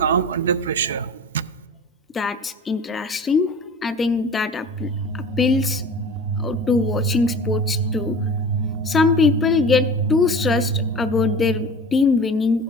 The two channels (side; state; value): both; normal; correlation 0.38